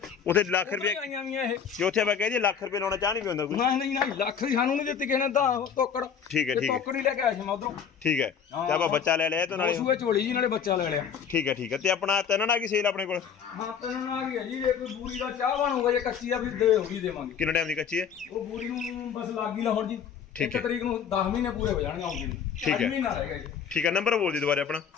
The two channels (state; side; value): quieter; right; 7.4 dB